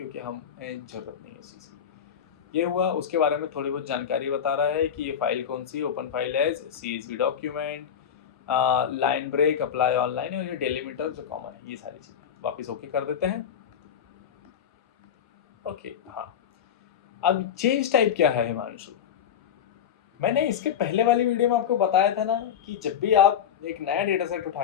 हमें जरूरत नहीं है इस चीज़ की। ये हुआ, उसके बारे में थोड़ी बहुत जानकारी बता रहा है कि ये फाइल कौन सी, open file as CSV document, line break, apply online, और ये डेलीमीटर जो कॉमन है, ये सारी चीज़ें। वापिस ओके कर देते हैं, ओके। हाँ अब चेंज टाइप क्या है हिमांशु, मैंने इसके पहले वाली वीडियो में आपको बताया था ना कि जब भी आप एक नया डेटा सेट उठा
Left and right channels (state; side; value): quieter; right; 8.5 dB